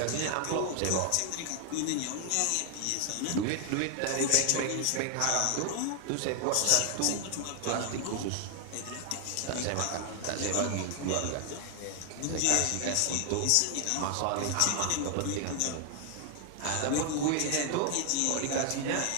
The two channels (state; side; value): different; both; correlation 0.00